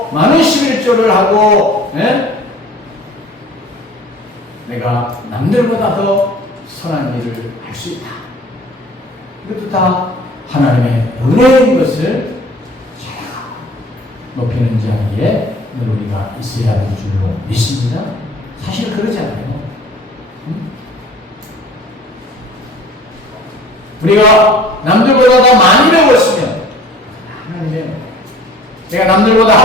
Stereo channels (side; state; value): both; normal; correlation 0.48